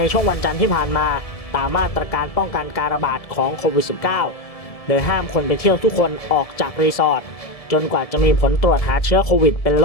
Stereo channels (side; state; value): right; late; 1.7 ms